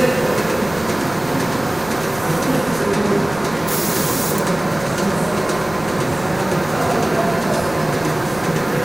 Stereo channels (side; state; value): right; noise; rumble, 18 dB below the sound